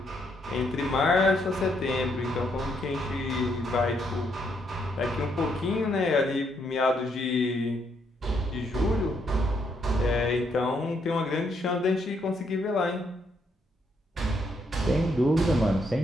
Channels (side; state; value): both; normal; correlation 0.74